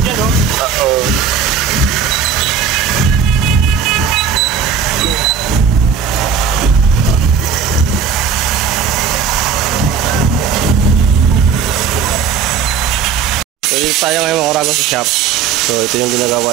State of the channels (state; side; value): quieter; left; 6.5 dB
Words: dyan, oh. Oo. So dito tayo ngayon mga Oragon sa shop. So ito yung ginagawa